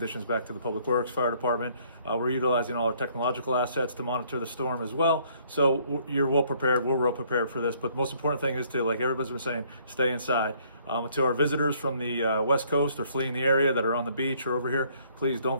back to the Public Works, Fire Department. We're utilizing all our technological assets to monitor the storm as well. So you're well prepared. We're well prepared for this. But the most important thing is to, like everybody's been saying, stay inside. To our visitors from the West Coast or fleeing the area that are on the beach or over here, please don't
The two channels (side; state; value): both; inverted; correlation -0.63